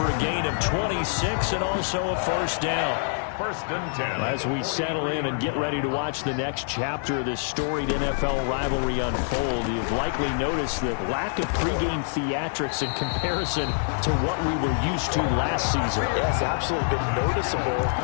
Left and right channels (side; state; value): right; silent; 61 dB below the other